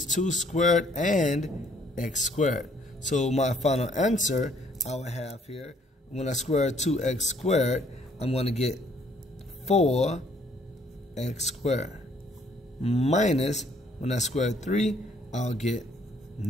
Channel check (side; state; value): both; normal; correlation 0.64